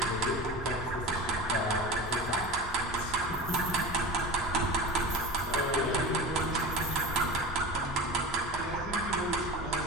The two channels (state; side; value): normal; both; correlation 0.30